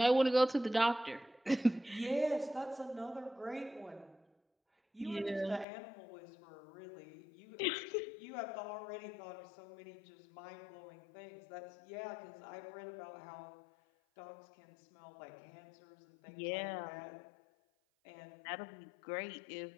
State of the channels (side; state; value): right; drops out; at 5.7 s